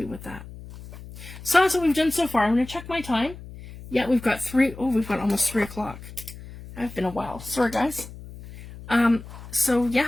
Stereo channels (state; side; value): noise; left; hum, 15 dB below the sound